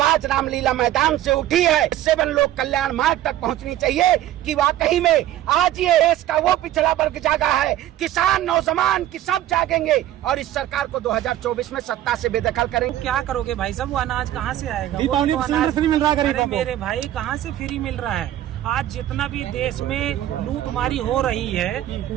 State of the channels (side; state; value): left; quieter; 13.1 dB